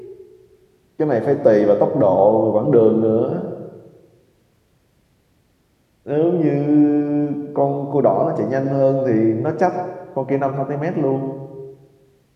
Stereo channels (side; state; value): both; identical; correlation 1.00